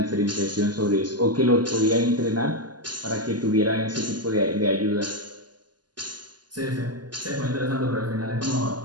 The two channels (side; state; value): left; late; 0.70 ms